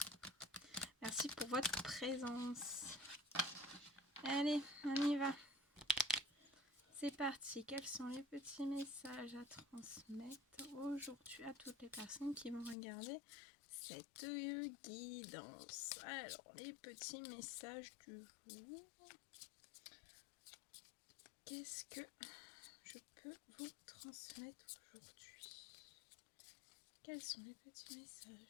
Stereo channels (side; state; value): right; drops out; at 12.8 s